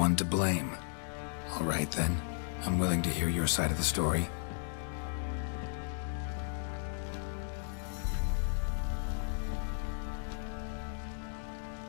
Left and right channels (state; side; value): silent; right; 54 dB below the other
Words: to blame. All right then, I'm willing to hear your side of the story.